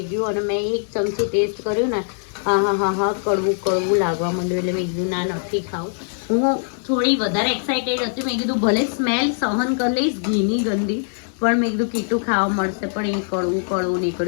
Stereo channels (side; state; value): right; silent; digital silence